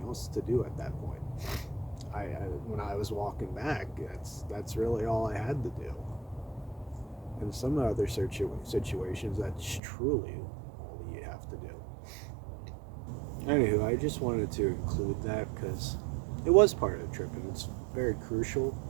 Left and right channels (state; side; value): drops out; left; at 9.8 s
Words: else to do at that point. When I was walking back, that's really all I had to do. In some other situations, that's truly all you have to do. Anywho, I just wanted to include that because it was part of the trip and it's very crucial.